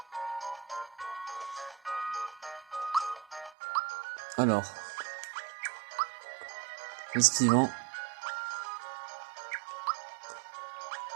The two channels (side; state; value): left; drops out; at 3.6 s